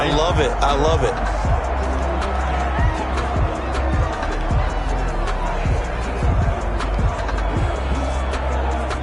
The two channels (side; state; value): both; identical; correlation 1.00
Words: I love it. I love it.